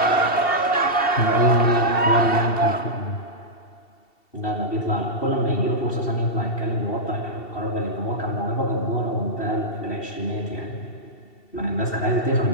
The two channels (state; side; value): late; right; 2.7 ms